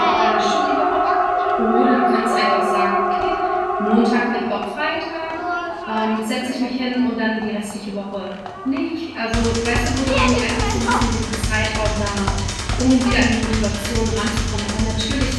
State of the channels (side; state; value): both; identical; correlation 1.00